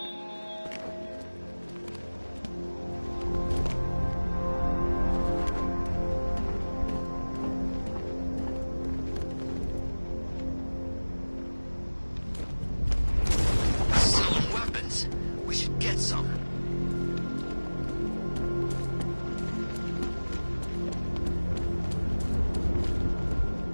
Selling weapons. We should get some.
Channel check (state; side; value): inverted; both; correlation -1.00